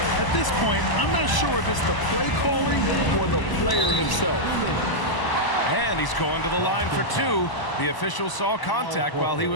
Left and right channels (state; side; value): late; right; 1.0 ms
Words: At this point, I'm not sure if it's the play calling or the player himself. And he's going to the line for 2. The official saw contact while he